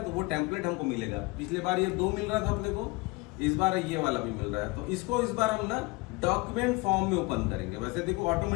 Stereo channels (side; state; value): right; quieter; 24.6 dB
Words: तो वो टेम्पलेट हमको मिलेगा। पिछले बार ये 2 मिल रहा था अपने को, इस बार ये वाला भी मिल रहा है। तो इसको इस बार हम ना डॉक्यूमेंट फॉर्म में ओपन करेंगे। वैसे देखो